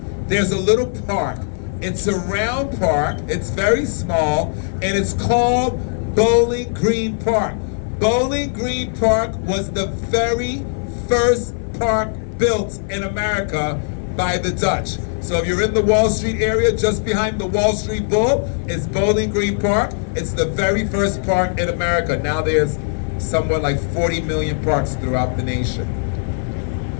there's a little park. It's a round park, it's very small, and it's called Bowling Green Park. Bowling Green Park was the very first park built in America by the Dutch. So if you're in the Wall Street area, just behind the Wall Street Bull is Bowling Green Park. It's the very first park in America. Now there's somewhat like 40 million parks throughout the nation.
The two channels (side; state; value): right; silent; 56 dB below the other